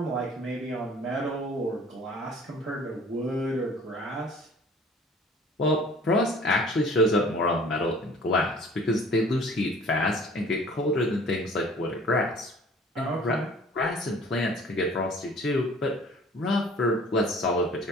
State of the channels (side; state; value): both; normal; correlation 0.49